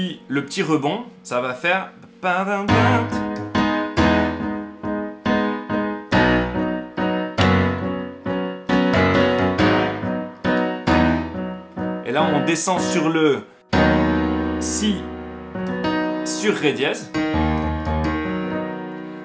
rebond, ça va faire... Et là, on descend sur le si sur ré dièse,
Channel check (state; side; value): identical; both; correlation 1.00